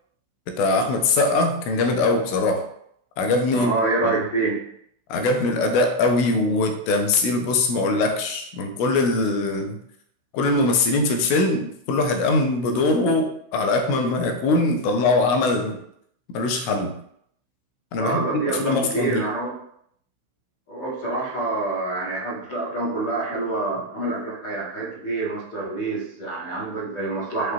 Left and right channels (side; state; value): right; late; 16 ms